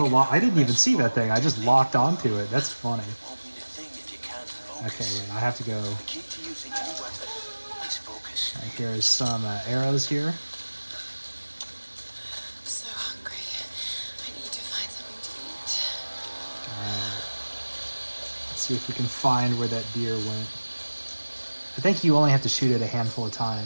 I didn't even see that thing. I just locked onto it. That's funny. Okay, wait, I have to go. Alright, here's some arrows here. I'm so hungry. I need to find something to eat. Alright. Let's see if we can find where that deer went. I think you only have to shoot it a handful of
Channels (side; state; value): both; inverted; correlation -1.00